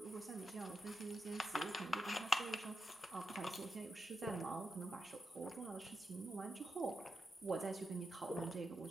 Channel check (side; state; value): both; normal; correlation 0.87